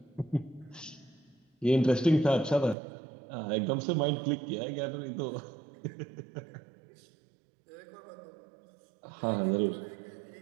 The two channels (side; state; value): left; drops out; at 2.8 s